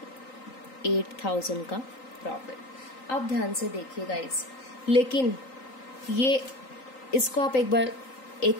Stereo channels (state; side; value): late; right; 3.9 ms